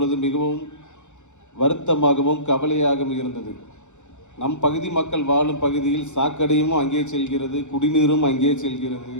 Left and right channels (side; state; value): right; late; 0.84 ms